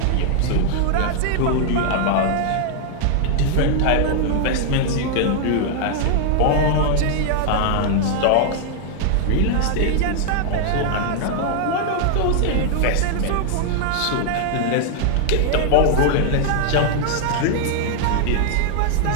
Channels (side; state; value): both; different; correlation 0.00